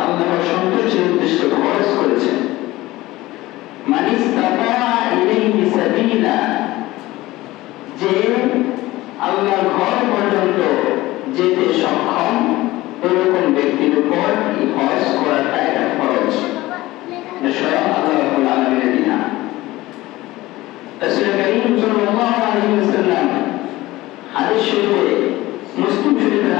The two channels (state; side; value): quieter; right; 18.1 dB